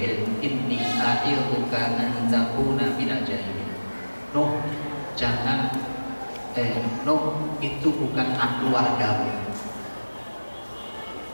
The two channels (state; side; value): inverted; both; correlation -1.00